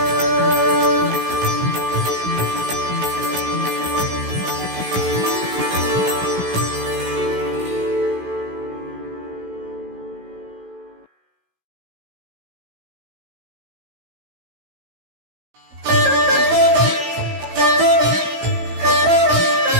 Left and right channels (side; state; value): left; late; 16 ms